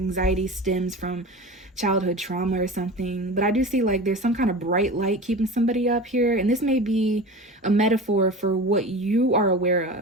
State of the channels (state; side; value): normal; both; correlation 0.32